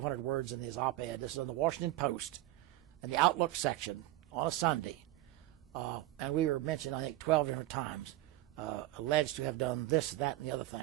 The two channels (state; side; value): quieter; left; 16.2 dB